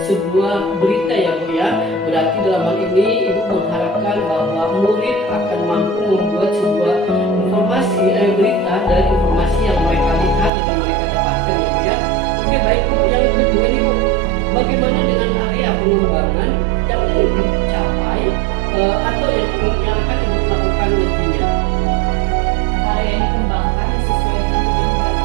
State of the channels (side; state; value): left; drops out; at 10.5 s